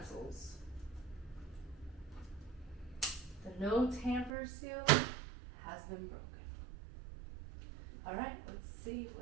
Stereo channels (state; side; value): drops out; left; at 4.3 s